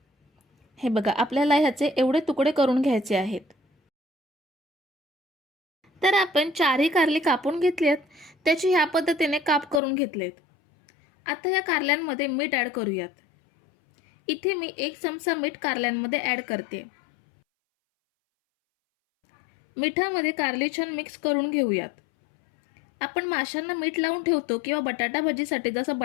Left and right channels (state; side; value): drops out; right; at 9.8 s